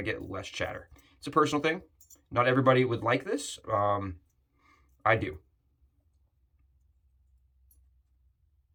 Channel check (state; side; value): identical; both; correlation 1.00